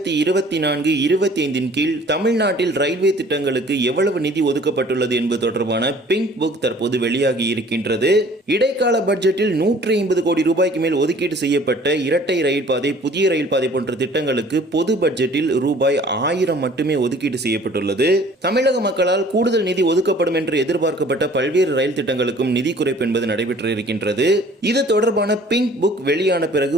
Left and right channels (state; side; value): normal; both; correlation 0.52